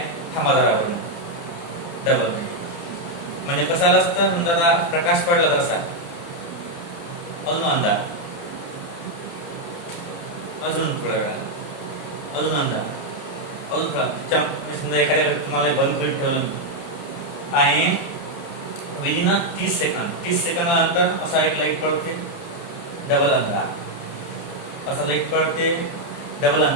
थांबा जरावर, डबल. म्हणजे कसं आलं असतं? समजा आता प्रकाश पडला तर असा अजून अंधार, अजून थोड्या वेळा अजून अंधार, अजून थोडा. समजा एखाद्या तुम्हाला बंद करून ठेवलं मी आणि विदिन 30 सेकंदानंतर असा एक लाईट पडते, डबल अंधार, असा लाईट पडते, डबल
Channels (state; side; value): late; right; 29 ms